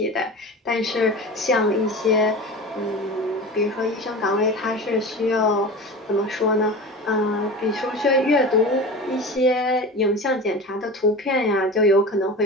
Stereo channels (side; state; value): both; normal; correlation 0.32